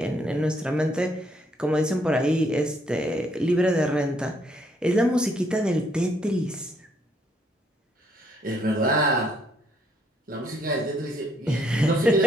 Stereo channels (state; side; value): normal; both; correlation 0.70